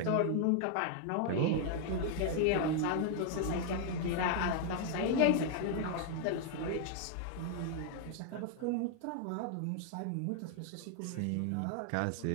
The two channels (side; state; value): both; different; correlation 0.00